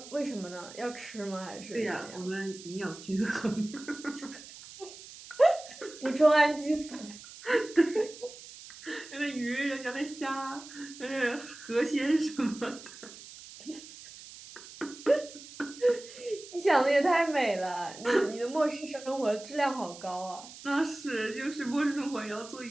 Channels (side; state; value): right; noise; hiss, 16 dB below the sound